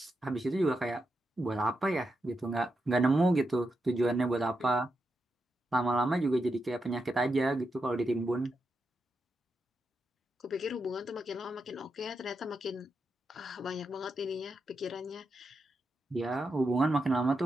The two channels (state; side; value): normal; both; correlation 0.85